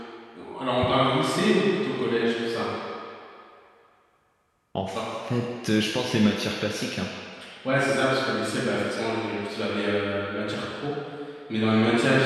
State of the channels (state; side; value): identical; both; correlation 1.00